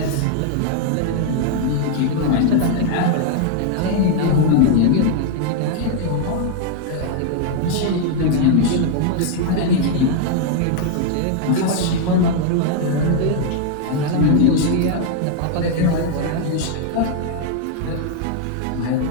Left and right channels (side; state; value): both; different; correlation 0.00